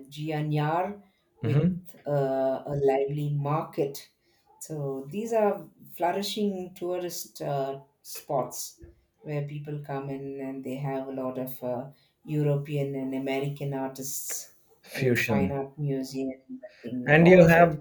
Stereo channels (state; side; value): identical; both; correlation 1.00